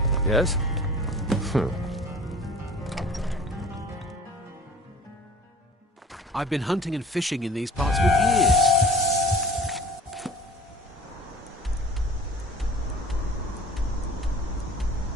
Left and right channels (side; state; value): both; normal; correlation 0.45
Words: Yes? I've been hunting and fishing in these parts for years.